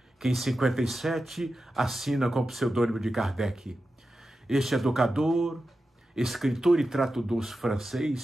que em 57 assina com o pseudônimo de Kardec. Este educador, escritor e tradutor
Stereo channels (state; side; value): normal; both; correlation 0.92